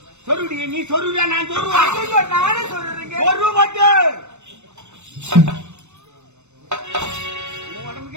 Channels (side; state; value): left; late; 0.82 ms